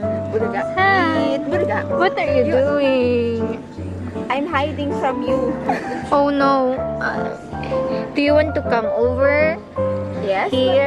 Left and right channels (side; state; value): both; identical; correlation 1.00